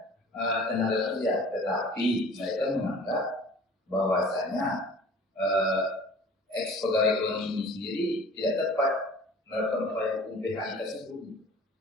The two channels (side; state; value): both; normal; correlation 0.46